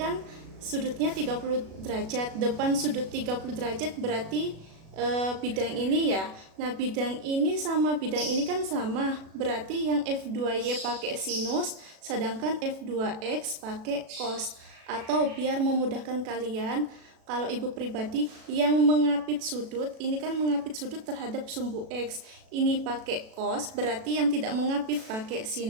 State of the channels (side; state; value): left; late; 37 ms